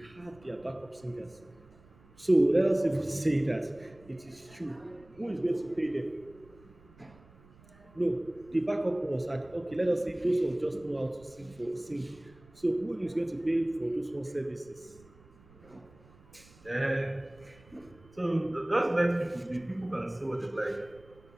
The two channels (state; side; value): noise; right; rumble, 25 dB below the sound